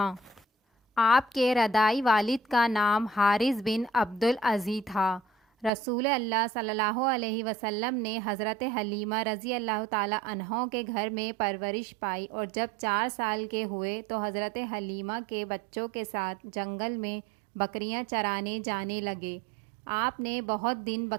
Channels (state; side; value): drops out; left; at 5.7 s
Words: آپ کے رضاعی والد کا نام حارث بن عبد العزی تھا۔ رسول اللہ صلی اللہ علیہ وسلم نے حضرت حلیمہ رضی اللہ تعالی عنہ کے گھر میں پرورش پائی، اور جب 4 سال کے ہوئے تو حضرت حلیمہ کے بچوں کے ساتھ جنگل میں بکریاں چرانے جانے لگے۔ آپ نے بہت دن